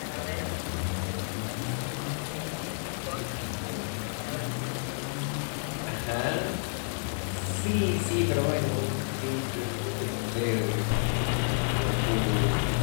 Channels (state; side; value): silent; right; digital silence